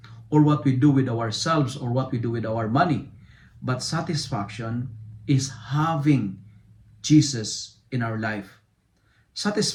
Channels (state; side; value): identical; both; correlation 1.00